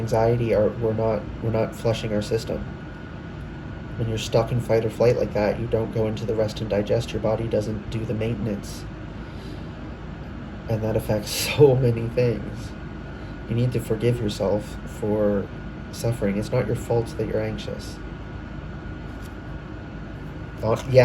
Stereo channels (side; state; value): both; identical; correlation 1.00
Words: we're not flushing our system. When you're stuck in fight or flight like that, you don't go into the rest and digest. Your body doesn't do the maintenance. And that affects so many things. You need to forgive yourself for suffering. It's not your fault that you're anxious.